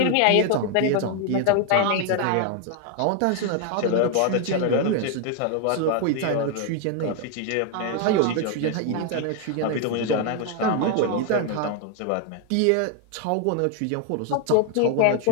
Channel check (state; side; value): different; both; correlation 0.01